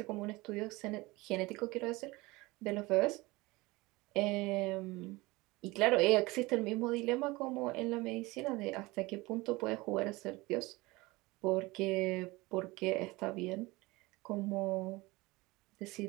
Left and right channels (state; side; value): quieter; left; 22.0 dB